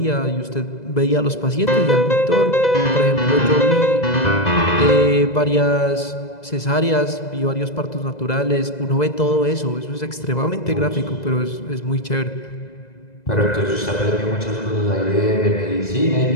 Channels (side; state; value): right; late; 2.0 ms